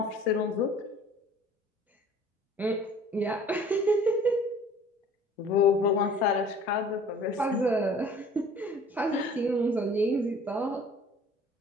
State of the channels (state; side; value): normal; both; correlation 0.50